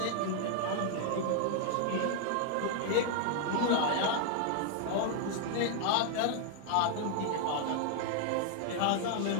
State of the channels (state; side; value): different; both; correlation 0.00